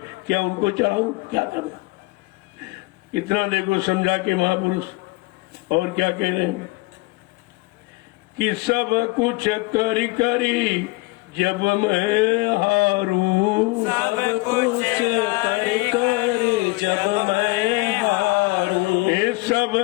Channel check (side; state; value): right; quieter; 24.2 dB